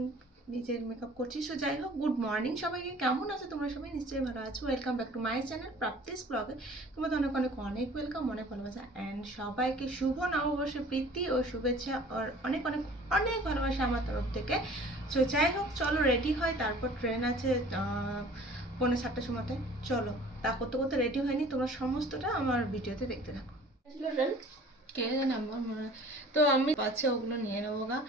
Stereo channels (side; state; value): both; normal; correlation 0.48